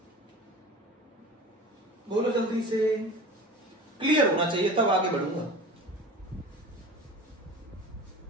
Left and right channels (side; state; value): both; normal; correlation 0.37